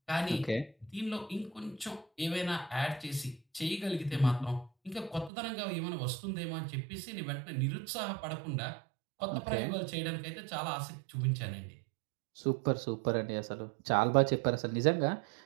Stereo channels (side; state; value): left; drops out; at 5.3 s